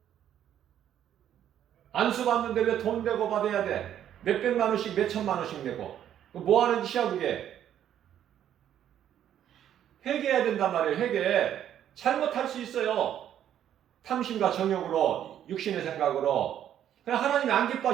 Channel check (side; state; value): left; quieter; 10.5 dB